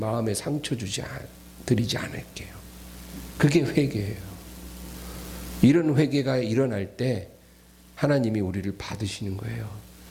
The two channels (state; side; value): identical; both; correlation 1.00